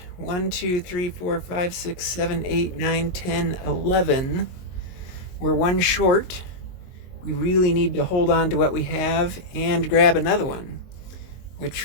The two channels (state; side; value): late; right; 22 ms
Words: 1, 2, 3, 4, 5, 6, 7, 8, 9, 10, 11. We're 1 short. We really need to hold on to what we have and grab another one,